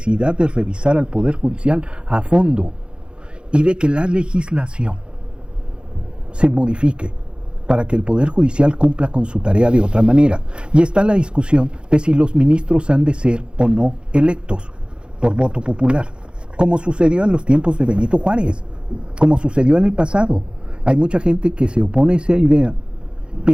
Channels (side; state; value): left; late; 0.053 ms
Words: de revisar al Poder Judicial a fondo y de que la legislación se modifique para que el Poder Judicial cumpla con su tarea de otra manera. Y está la discusión de si los ministros han de ser o no electos por voto popular, como sucedió en los tiempos de Benito Juárez, como sucedió en el pasado. Hay mucha gente que se opone a esa idea,